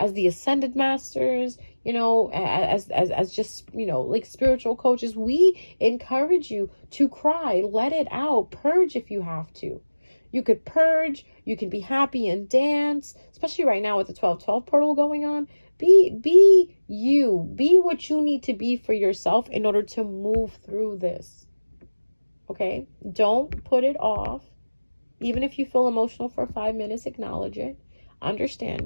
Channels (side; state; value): both; inverted; correlation -1.00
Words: the ascended masters, you know, as just, you know, like spiritual coaches, we encourage you to cry, let it out, purge if you have to. You could purge, you can be happy and dance, especially right now with the 12/12 portal going on. Be you, be what you need to be for yourself in order to move through this. Okay? Don't put it off. Even if you feel emotional for 5 minutes, acknowledge it,